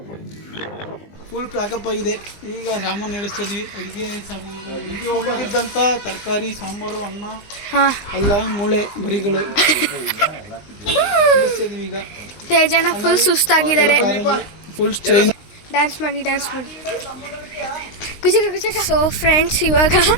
ಫುಲ್ ಪ್ಯಾಕಪ್ ಆಗಿದೆ. ಈಗ ಸಾಮಾನು ನಡೆಸ್ತಿದ್ವಿ. ಅಡುಗೆ ಸಾಮಾನುಗಳು ಇಲ್ಲಿ ಹೋಗಿದ್ದಂಥ ತರಕಾರಿ, ಸಾಂಬಾರು, ಅನ್ನ, ಅಲ್ಲ ಮೂಳೆ ಬರಿಗಳು ನಡೆಸ್ತಿದ್ವಿ. ಈಗ ತೇಜಣ್ಣ ಫುಲ್ ಸುಸ್ತಾಗಿದ್ದಾರೆ. Full change. ಡ್ಯಾನ್ಸ್ ಮಾಡಿ ಸೊ ಫ್ರೆಂಡ್ಸ್, ಇವಾಗ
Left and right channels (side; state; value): right; late; 19 ms